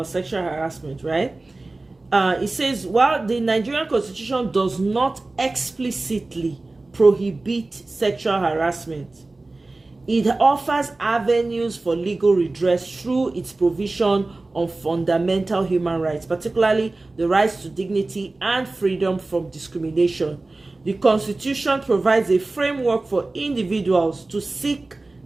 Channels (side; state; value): left; quieter; 3.2 dB